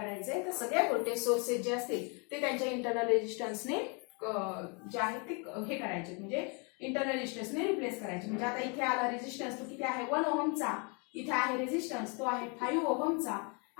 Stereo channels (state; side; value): quieter; right; 33.9 dB